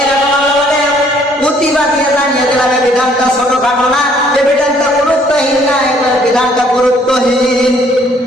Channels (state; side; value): normal; both; correlation 0.62